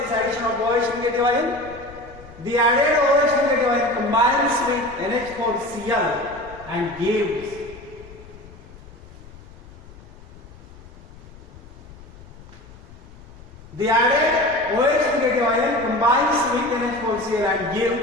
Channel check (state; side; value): noise; left; rumble, 19 dB below the sound